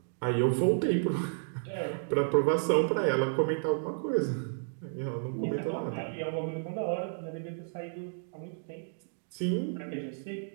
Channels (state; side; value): silent; left; digital silence